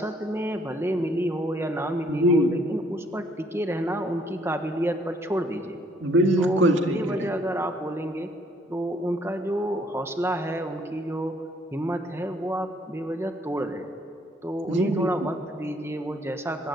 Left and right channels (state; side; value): normal; both; correlation 0.64